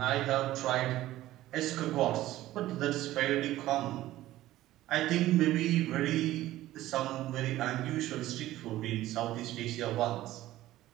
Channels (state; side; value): quieter; left; 15.3 dB